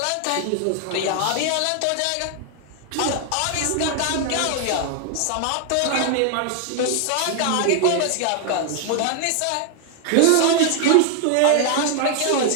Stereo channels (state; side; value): different; both; correlation 0.00